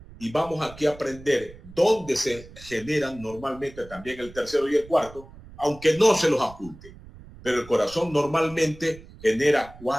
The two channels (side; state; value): right; noise; rumble, 19 dB below the sound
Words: y vamos aquí a aprender dónde se generan normalmente también el tercero y el cuarto, aunque no se los oculte. Pero el corazón normalmente genera